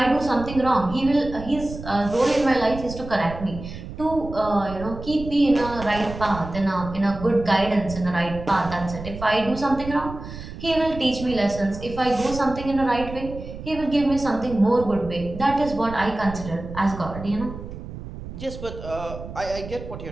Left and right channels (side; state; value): right; noise; rumble, 11 dB below the sound